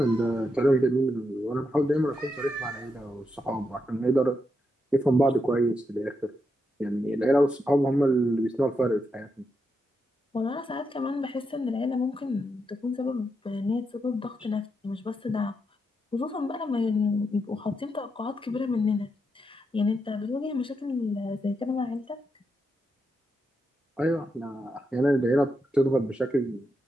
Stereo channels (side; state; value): both; normal; correlation 0.83